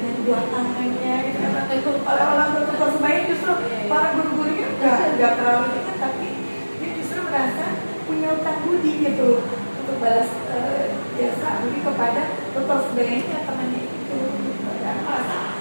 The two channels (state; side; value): inverted; both; correlation -1.00